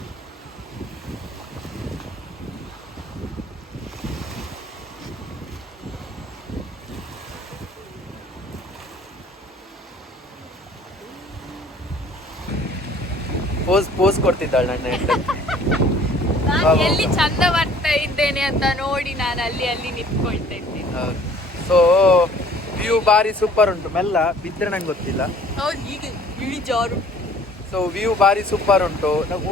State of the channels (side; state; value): both; normal; correlation 0.53